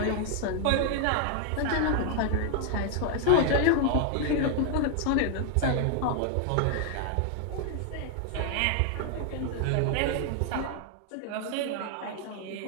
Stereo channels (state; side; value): different; both; correlation 0.00